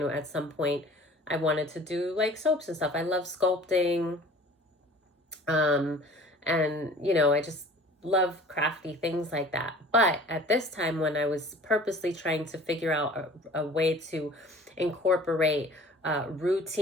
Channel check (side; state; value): both; normal; correlation 0.46